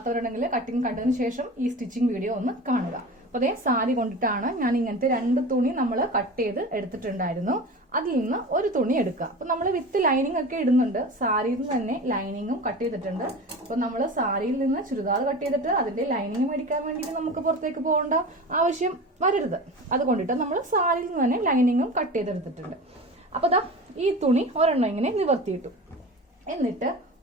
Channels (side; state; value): both; normal; correlation 0.32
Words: കട്ടിങ് കണ്ടതിന് ശേഷം ഈ സ്റ്റിച്ചിങ് വീഡിയോ ഒന്ന് കാണുക. അപ്പൊ അതേ സാരി കൊണ്ടിട്ടാണ് ഞാൻ ഇങ്ങനത്തെ 2 തുണി നമ്മൾ കട്ട് ചെയ്ത് എടുത്തിട്ടുണ്ടായിരുന്നു. അതിൽ നിന്ന് ഒരു തുണി എടുക്കുക. അപ്പൊ നമ്മൾ വിത്ത് ലൈനിങ് ഒക്കെ ഇടുന്നുണ്ട്. സാരിയിൽ നിന്ന് തന്നെ ലൈനിങ്ങും കട്ട് ചെയ്തിട്ടുണ്ട്. അപ്പൊ നമ്മൾ സാരിയിൽ നിന്ന് ചുരിദാർ കട്ട് ചെയ്തിട്ട് അതിന്റെ ലൈനിങ് മേടിക്കാൻ വേണ്ടിയിട്ട് നമുക്ക് പുറത്തേക്ക് പോകേണ്ട ആവശ്യം വരരുത്. അതുകൊണ്ടിട്ട് നമ്മൾ സാരിയിൽ നിന്ന് തന്നെ ലൈനിങ്ങും കട്ട് ചെയ്തെടുത്തിട്ടുണ്ട്. അപ്പൊ ദാ ഈ തുണി ഒരെണ്ണം ഇങ്ങനെ നിവർത്തിയിട്ടു. എന്നിട്ട്